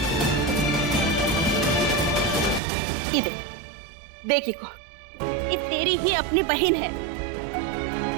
ये देख, देखी को, ये तेरी ही अपनी बहन है,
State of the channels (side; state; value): left; drops out; at 2.6 s